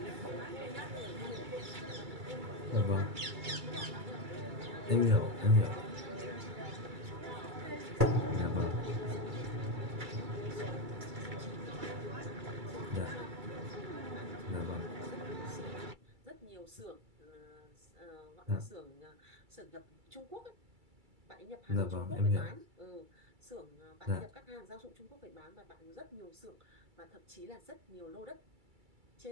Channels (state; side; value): late; left; 2.3 ms